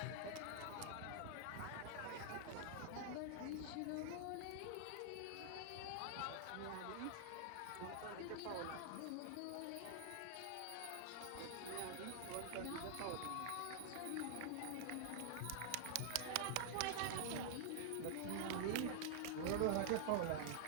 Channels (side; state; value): both; different; correlation -0.01